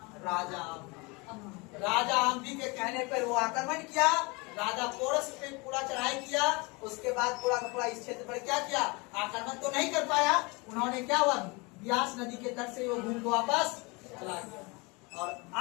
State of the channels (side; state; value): right; quieter; 27.4 dB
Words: राजा अम्बी के कहने पर वो आक्रमण किया। राजा पोरस पे पूरा चढ़ाई किया। उसके बाद पूरा का पूरा इस क्षेत्र पर क्या किया? आक्रमण तो नहीं कर पाया। उन्होंने क्या हुआ? ब्यास नदी के तट से वो घूम को वापस चला गया। और